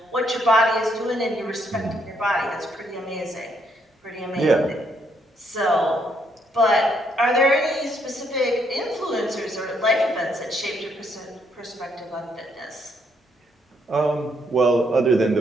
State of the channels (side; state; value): both; normal; correlation 0.73